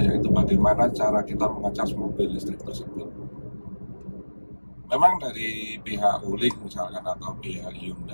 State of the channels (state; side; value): inverted; both; correlation -1.00